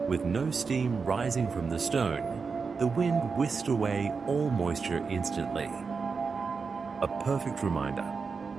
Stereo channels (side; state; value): left; quieter; 5.0 dB